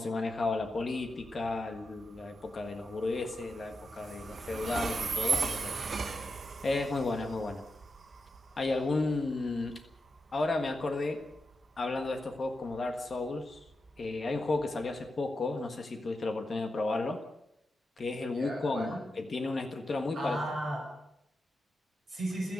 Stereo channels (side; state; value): both; normal; correlation 0.88